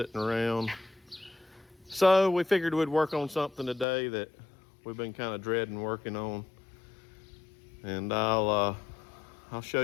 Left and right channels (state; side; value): drops out; right; at 3.9 s